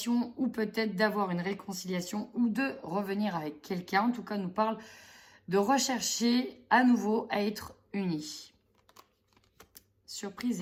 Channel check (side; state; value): both; identical; correlation 1.00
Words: ou peut-être d'avoir une réconciliation ou de revenir avec quelqu'un. En tout cas, on nous parle de rechercher à nouveau à être unis. Surprise,